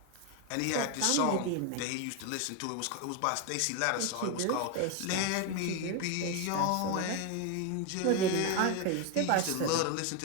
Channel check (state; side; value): different; both; correlation 0.01